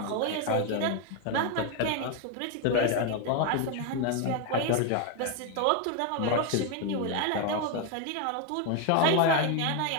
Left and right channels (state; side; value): different; both; correlation 0.01